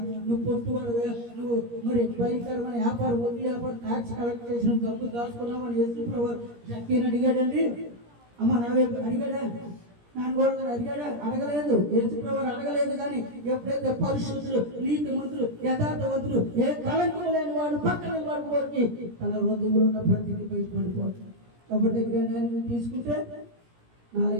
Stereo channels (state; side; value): late; left; 17 ms